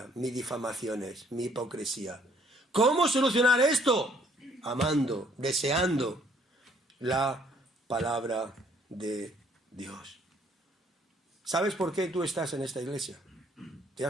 mis difamaciones, mi hipocresía. ¿Cómo solucionar esto? Amando, deseando la palabra de Dios. ¿Sabes por qué tú estás en esta iglesia? ¿Te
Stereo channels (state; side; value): normal; both; correlation 0.64